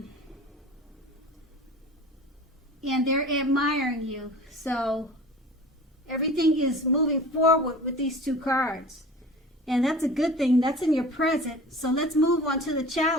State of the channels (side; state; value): both; normal; correlation 0.40